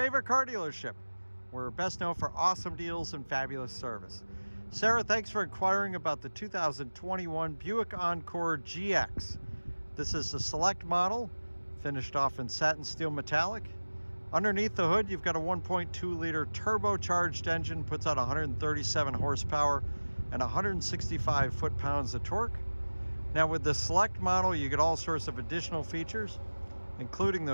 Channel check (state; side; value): inverted; both; correlation -1.00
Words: car dealership. We're best known for awesome deals and fabulous service. Sara, thanks for inquiring about the 2021 Buick Encore GX. This is the select model, finished off in satin steel metallic. Underneath the hood, you've got a 1.2 liter turbocharged engine, puts out 137 horsepower and 165 foot-pounds of torque. Now with the select model, you get all sorts of additional features, including